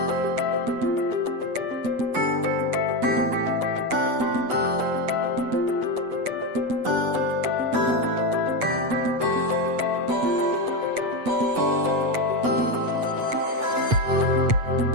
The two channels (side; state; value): left; late; 8.1 ms